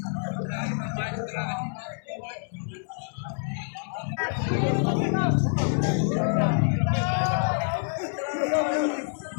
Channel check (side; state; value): right; silent; 60 dB below the other